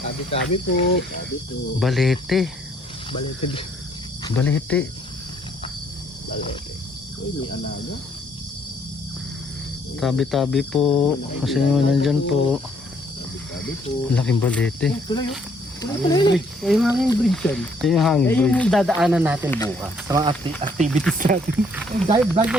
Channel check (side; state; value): both; normal; correlation 0.66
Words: tabi-tabi po. Tabi po. Balete. Balete. Balete. Balete. Uy, may alaga. Tabi-tabi po. Kasi nandyan po. Tabi po. Laking balete. Tuloy yun. Tuloy. Yung hanging bridge yan. Ito yung hanging bridge. Yung dadaanan natin bukas sa mga activities natin. Dahil bago